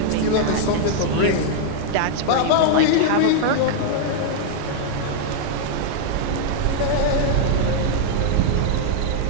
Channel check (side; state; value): both; different; correlation -0.01